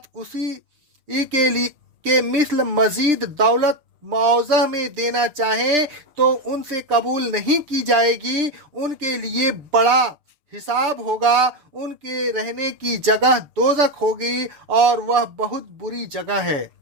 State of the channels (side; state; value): left; late; 6.7 ms